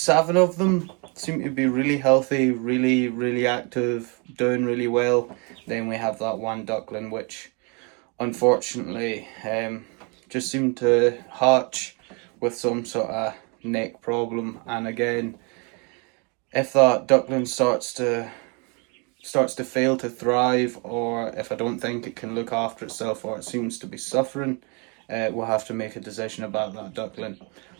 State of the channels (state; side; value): quieter; left; 33.2 dB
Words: of them. Seem to be really healthy, really active, doing really well. Then we have that one duckling which unfortunately just seemed to hatch with some sort of neck problem, and again, if that duckling starts to fail to thrive, or if I don't think it can look after itself, or it seems to be suffering, we'll have to make a decision about that duckling